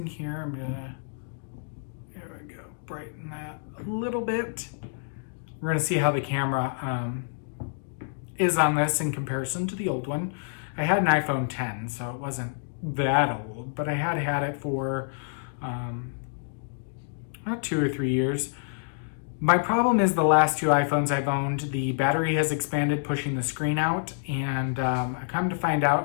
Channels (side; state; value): right; silent; digital silence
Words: here, I'm gonna brighten that a little bit. We're going to see how the camera is on this in comparison to the old one. I had an iPhone 10, so it wasn't that old, but I had it for about 2 or 3 years. My problem is the last 2 iPhones I've owned, the battery has expanded, pushing the screen out, and I come to find